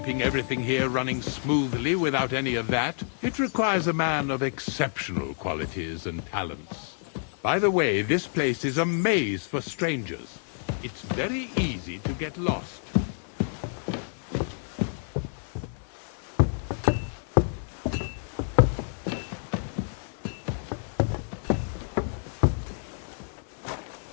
everything here running smoothly without any of that. It requires a man of exceptional qualities and talents. By the way, this place is a maze for strangers. It's very easy to get lost.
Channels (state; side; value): silent; right; digital silence